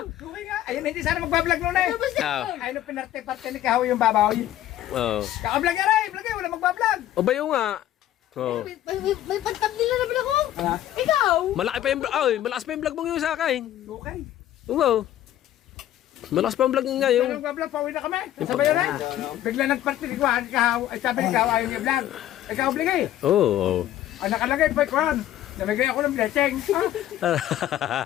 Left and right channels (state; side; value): quieter; right; 12.7 dB